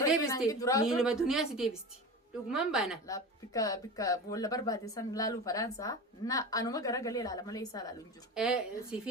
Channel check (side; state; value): both; normal; correlation 0.29